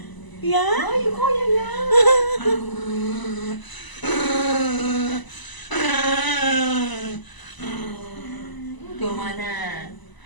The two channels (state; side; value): late; right; 1.0 ms